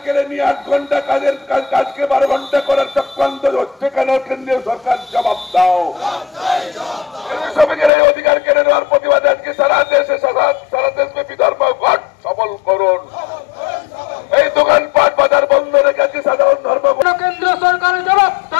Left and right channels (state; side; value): drops out; right; at 7.9 s